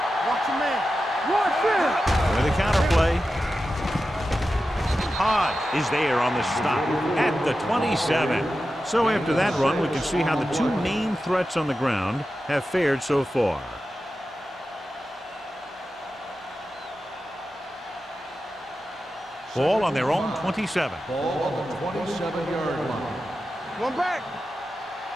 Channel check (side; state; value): both; normal; correlation 0.92